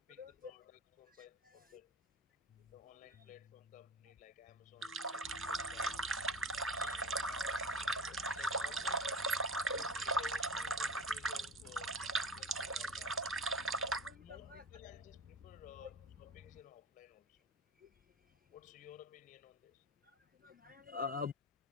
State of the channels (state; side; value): normal; both; correlation 0.32